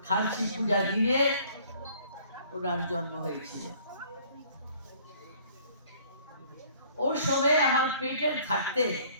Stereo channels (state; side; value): inverted; both; correlation -0.56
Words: খার্চি পূজা দিনে ওনার জন্ম হয়েছিল। ওর সময় আমার পেটের থাকতে,